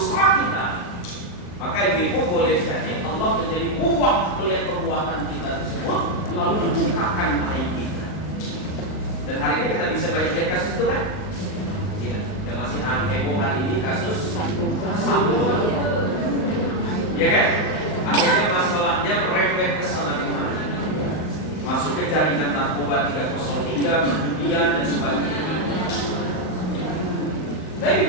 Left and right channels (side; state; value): right; late; 39 ms